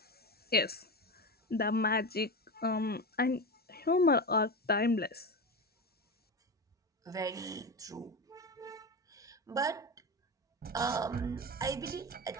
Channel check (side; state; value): both; normal; correlation 0.21